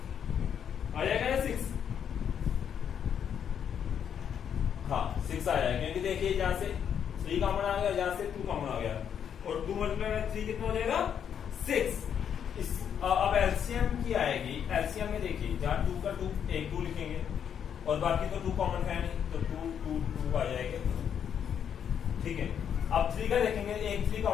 ना 6। हाँ 6 आ जाएगा क्योंकि देखिए जहां से 3 कॉमन आ गया, जहां से 2 कॉमन आ गया और 2 मल्टीप्लाई बाय 3 कितना हो जाएगा 6। अब एलसीएम की आएगी, एलसीएम में देखिए जहां 2 का 2 एक 2 लिखेंगे और बाकी तो 2 कॉमन है नहीं तो 2 2 2 आ जाएगा। ठीक है, अब 3 का देखेंगे, एक 3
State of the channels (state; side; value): quieter; right; 8.4 dB